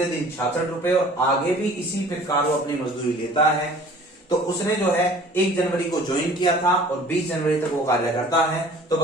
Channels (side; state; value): both; normal; correlation 0.48